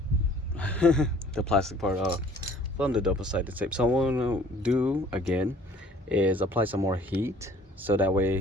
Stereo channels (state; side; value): normal; both; correlation 0.54